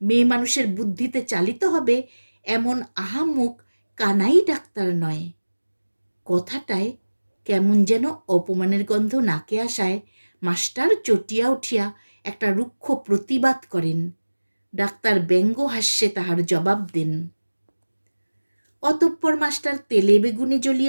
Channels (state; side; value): inverted; both; correlation -1.00